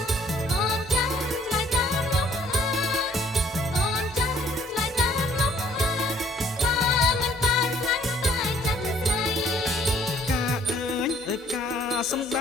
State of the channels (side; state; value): both; normal; correlation 0.61